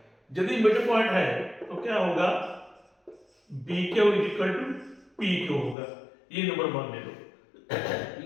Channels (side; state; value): right; drops out; at 5.8 s